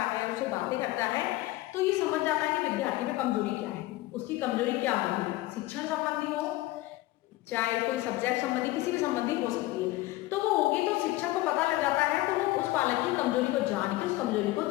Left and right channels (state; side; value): quieter; right; 18.0 dB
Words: है, उससे बातें करता है तो ये समझ जाता है कि विद्यार्थी में कमजोरी क्या है, उसकी कमजोरी क्या होगी, शिक्षण संबंधी हो चाहे कोई सब्जेक्ट संबंधी, किसी भी संबंधी हो सकती है, तो वो होगी तो शिक्षक को पता लग जाता है, तो वो उस बालक की कमजोरी को जान के उस कमजोरी को